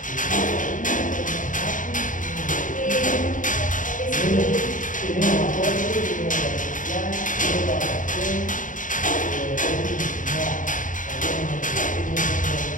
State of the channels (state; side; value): late; right; 0.38 ms